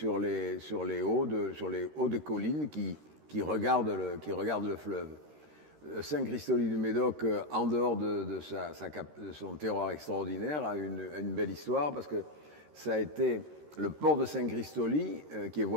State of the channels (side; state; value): left; late; 13 ms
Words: les hauts de collines qui regardent le fleuve. Saint-Christoly du Médoc, en dehors de son terroir extraordinaire, a une belle histoire parce que ça a été le port de Saint-Christoly, qui est